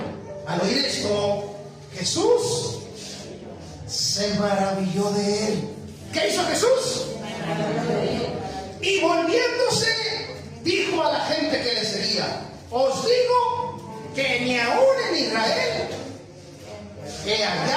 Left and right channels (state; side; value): identical; both; correlation 1.00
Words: al oír esto, Jesús se maravilló de él. ¿Qué hizo Jesús? Y volviéndose, dijo a la gente que le seguía: os digo que ni aún en Israel he